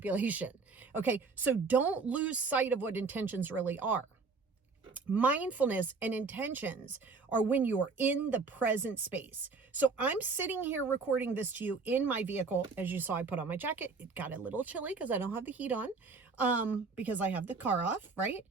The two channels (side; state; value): left; quieter; 4.4 dB